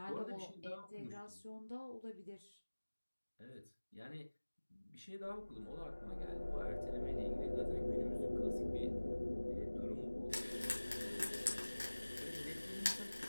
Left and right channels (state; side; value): inverted; both; correlation -1.00